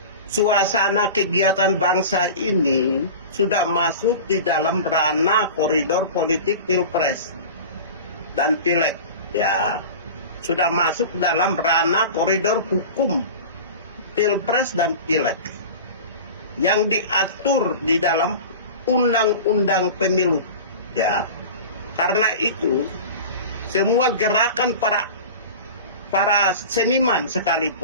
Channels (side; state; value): both; inverted; correlation -0.34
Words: suasana kegiatan bangsa ini sudah masuk di dalam ranah koridor politik pilpres dan pileg, ya. Sudah masuk dalam ranah koridor hukum pilpres dan pileg yang diatur di dalam undang-undang pemilu, ya. Karena itu semua gerakan para seniman